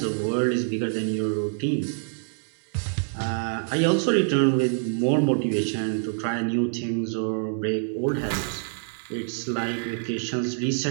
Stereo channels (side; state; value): left; silent; 61 dB below the other